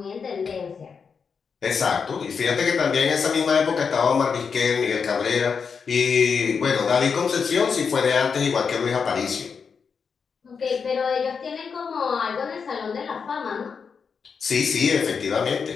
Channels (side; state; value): right; quieter; 5.9 dB